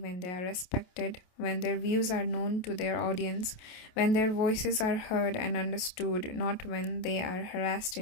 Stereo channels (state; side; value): late; right; 28 ms